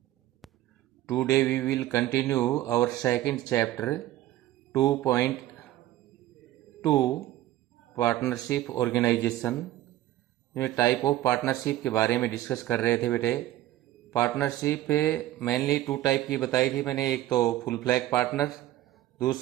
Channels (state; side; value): quieter; left; 14.6 dB